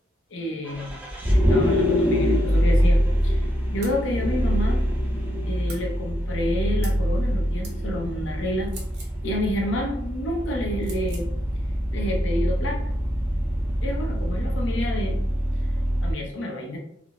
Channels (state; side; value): normal; both; correlation 0.82